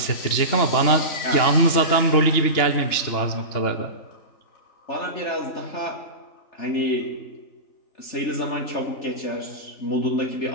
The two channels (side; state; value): right; late; 2.9 ms